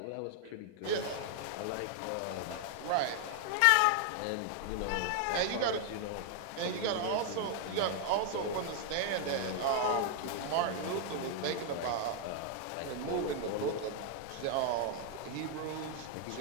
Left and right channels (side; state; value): both; different; correlation 0.00